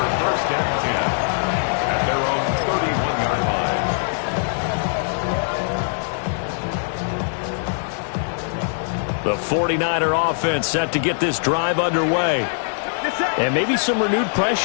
1st and 10 at their own 31-yard line. The 49er offense set to get this drive underway. And maybe some renewed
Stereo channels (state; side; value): silent; right; digital silence